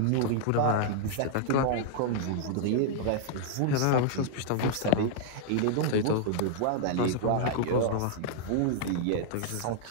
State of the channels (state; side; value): different; both; correlation -0.01